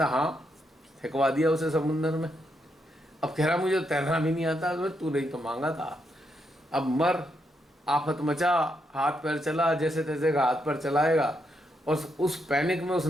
हाँ, फेंकवा दिया उसे समुंदर में। अब कह रहा मुझे तैरना भी नहीं आता, तो तू नहीं तो मांगा था, अब मर, आफत मचा, हाथ पैर चला, जैसे तैसे का हाथ पैर चलाएगा, और उस पैनिक में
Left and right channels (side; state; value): both; normal; correlation 0.80